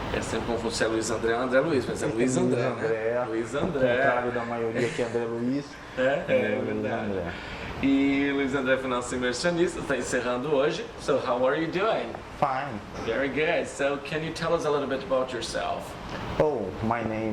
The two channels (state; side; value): identical; both; correlation 1.00